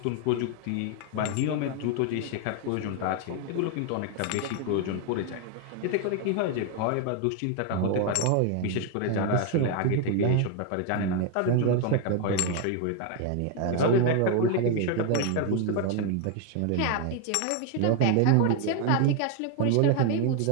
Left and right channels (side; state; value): both; different; correlation 0.01